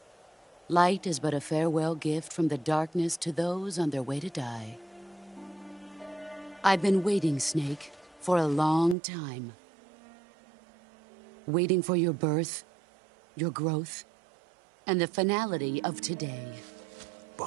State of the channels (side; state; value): left; drops out; at 9.0 s